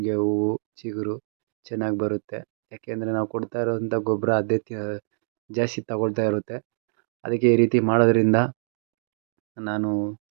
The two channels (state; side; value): silent; left; digital silence